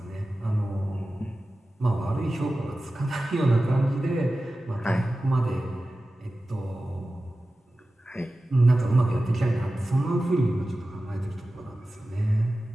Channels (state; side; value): normal; both; correlation 0.95